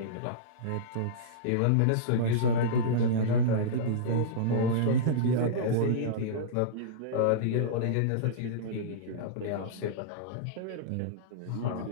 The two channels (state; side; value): different; both; correlation -0.04